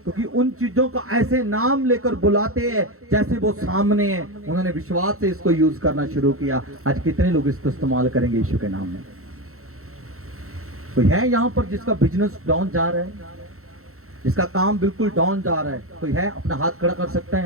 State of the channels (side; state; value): left; late; 0.63 ms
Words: क्योंकि उन चीजों का ऐसे नाम लेकर बुलाते हैं जैसे वो सामने है। उन्होंने विश्वास से इसको यूज करना शुरू किया। आज कितने लोग इसको इस्तेमाल करेंगे यीशु के नाम में? कोई है यहाँ पर जिसका बिजनेस डाउन जा रहा है, जिसका काम बिल्कुल डाउन जा रहा है? कोई है? अपना हाथ खड़ा कर सकता है